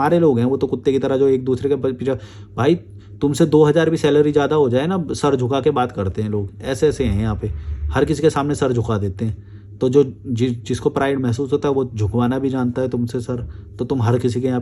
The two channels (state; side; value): identical; both; correlation 1.00